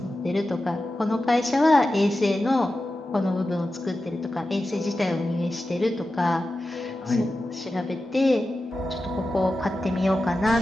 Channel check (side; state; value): both; normal; correlation 0.93